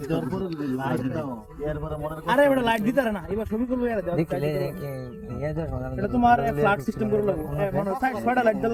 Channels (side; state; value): both; identical; correlation 1.00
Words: আরে এটা লাইট দিতে না এবার ছবি করব এর দাও এটা তোমার ফ্ল্যাট সিস্টেম করে লাগবে মানে 6টা লাইট দেওয়া